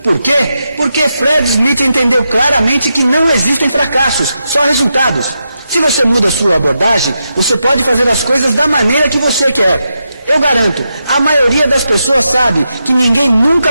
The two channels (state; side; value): inverted; both; correlation -0.86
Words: Por quê? Porque Fred Smith entendeu claramente que não existem fracassos, só resultados. Se você muda a sua abordagem, você pode fazer as coisas da maneira que você quer. Eu garanto, a maioria das pessoas sabe que ninguém